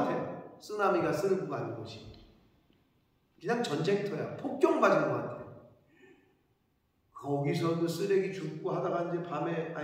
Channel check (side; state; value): both; identical; correlation 1.00